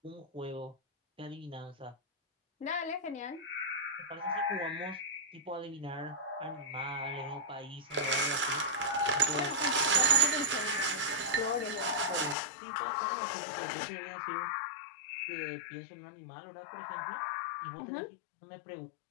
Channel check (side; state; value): right; drops out; at 12.4 s